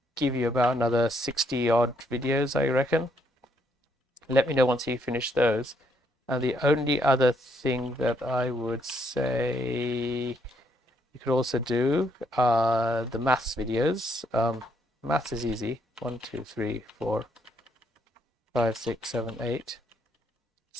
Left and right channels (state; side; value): normal; both; correlation 0.73